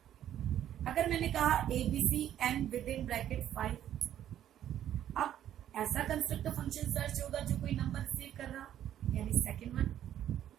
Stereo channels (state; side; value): quieter; left; 11.1 dB